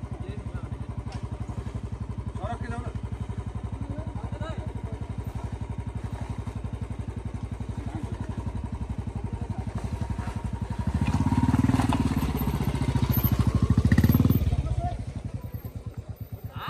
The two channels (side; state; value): both; identical; correlation 1.00